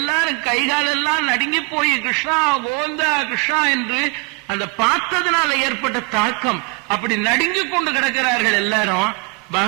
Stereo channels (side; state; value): left; quieter; 29.9 dB